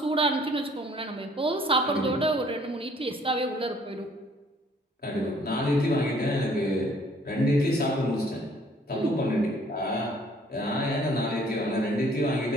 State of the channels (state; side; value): normal; both; correlation 0.59